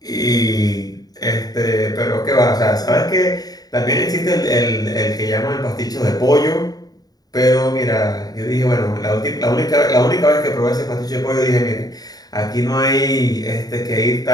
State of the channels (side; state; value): right; late; 0.18 ms